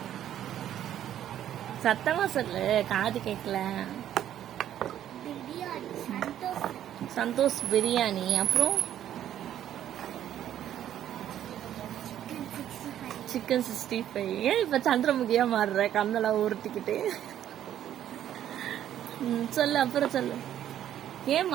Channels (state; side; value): quieter; left; 11.1 dB